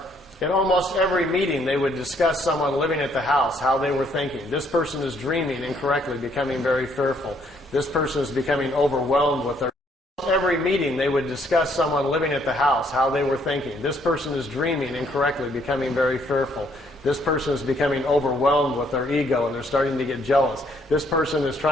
In almost every meeting, they would discuss someone living at the house, how they were thinking. This person is dreaming incorrectly, becoming very fearful. This person is becoming overwhelmed with their... Every meeting, they would discuss someone living at the house, how they were thinking. This person is dreaming incorrectly, becoming very fearful. This person is becoming overwhelmed with their ego, and they're starting to get jealous. This person is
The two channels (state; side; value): normal; both; correlation 0.67